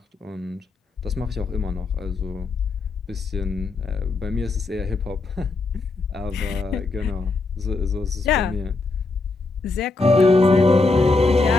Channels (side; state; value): right; quieter; 3.6 dB